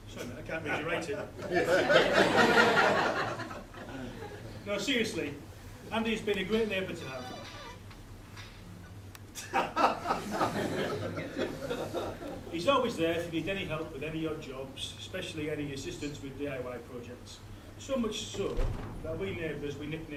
Sorry, man, I can't read your writing. No, seriously, Andy's been a great neighbour to have. He's always there if you need any help with any odd jobs, especially any assistance with DIY projects. So much so that we neighbours, we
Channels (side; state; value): both; identical; correlation 1.00